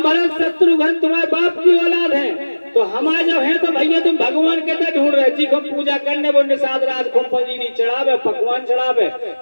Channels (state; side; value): inverted; both; correlation -1.00